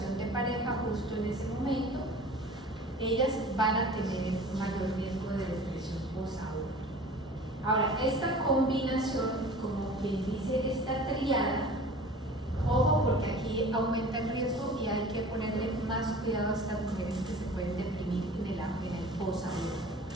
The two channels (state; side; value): normal; both; correlation 0.42